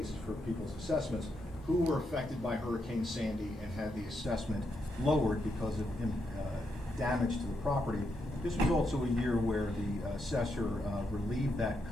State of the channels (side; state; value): both; normal; correlation 0.81